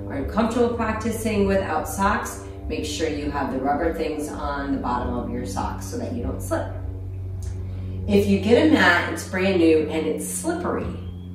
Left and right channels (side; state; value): both; identical; correlation 1.00